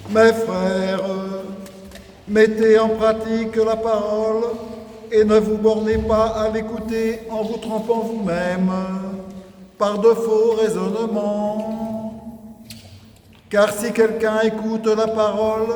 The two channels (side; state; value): both; identical; correlation 1.00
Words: Mes frères, mettez en pratique la parole et ne vous bornez pas à l'écouter en vous trompant vous-même par de faux raisonnements. Car si quelqu'un écoute la parole